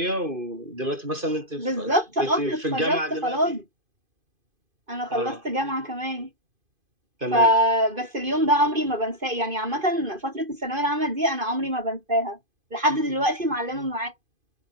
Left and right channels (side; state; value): left; late; 2.5 ms